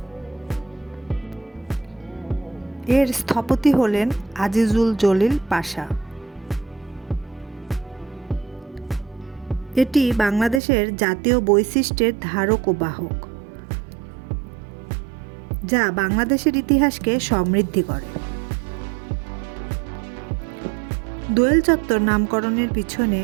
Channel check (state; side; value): drops out; left; at 10.6 s